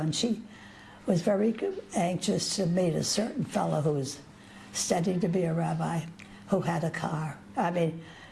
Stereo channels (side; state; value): both; identical; correlation 1.00